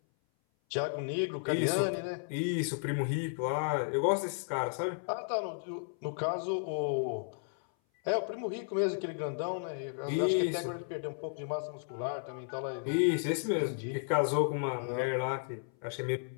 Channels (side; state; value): right; silent; 55 dB below the other